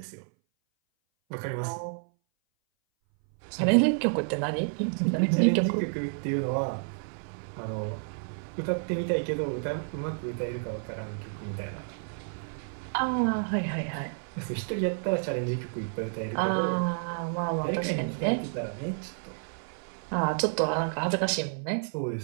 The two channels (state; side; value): silent; left; 58 dB below the other